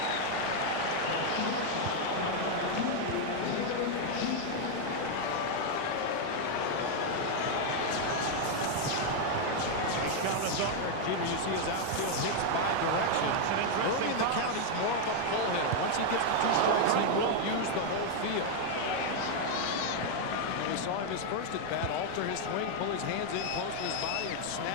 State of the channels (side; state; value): both; different; correlation 0.00